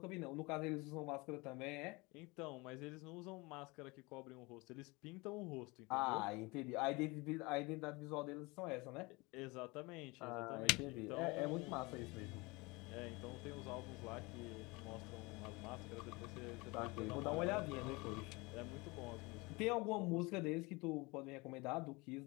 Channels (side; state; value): right; quieter; 25.1 dB